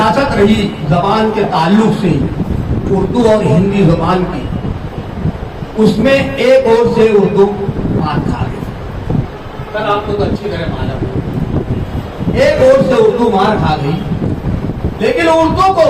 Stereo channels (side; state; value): both; identical; correlation 1.00